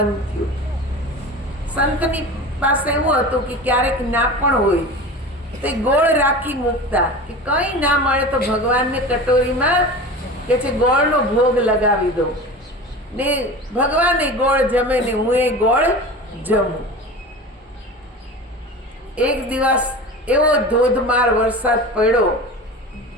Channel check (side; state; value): both; normal; correlation 0.33